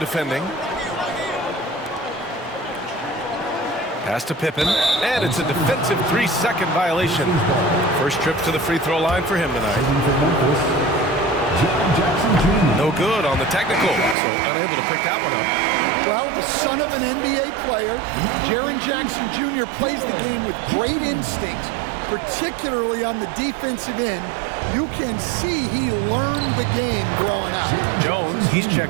Pass to Pippen, and it's a defensive 3-second violation. First trip to the free throw line for him tonight. No good on the technical, so unable to pick that one up. Well, the son of an NBA player, Jaren Jackson Jr. plays the game with great instinct, particularly on the defensive end. You can see he learned the game growing up. Jones, he's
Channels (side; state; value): left; drops out; at 14.2 s